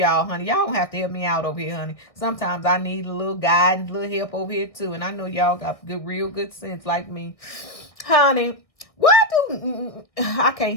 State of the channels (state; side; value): late; right; 1.7 ms